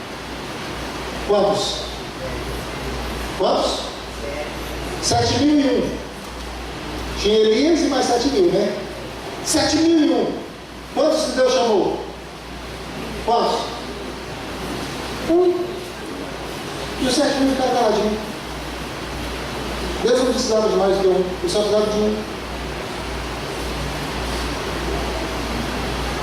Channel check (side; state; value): both; identical; correlation 1.00